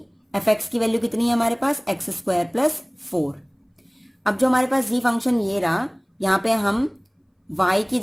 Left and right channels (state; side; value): identical; both; correlation 1.00